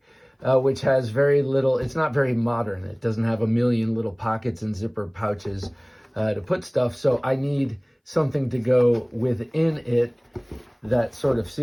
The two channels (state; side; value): identical; both; correlation 1.00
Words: which has very little. It's not very modern. It doesn't have a million little pockets and zipper pouches to put stuff. So I need something to go within it that sort of